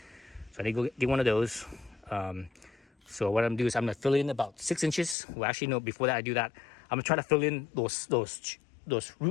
So I need to go get one of those. So what I'm gonna do is I'm gonna fill in about 6 inches. Well, actually, no. Before that, I do that, I'm gonna try to fill in those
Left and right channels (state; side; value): drops out; right; at 5.2 s